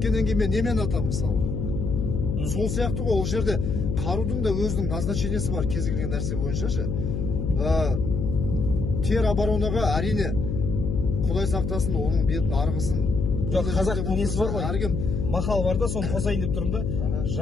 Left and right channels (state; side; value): noise; left; hum, 2 dB below the sound